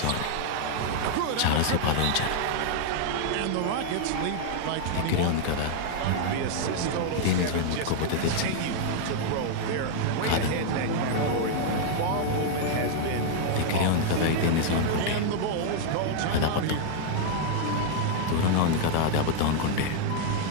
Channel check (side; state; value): both; different; correlation 0.00